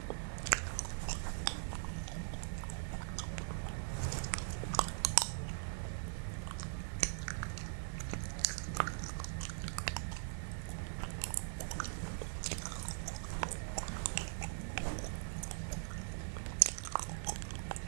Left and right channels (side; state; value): left; silent; 50 dB below the other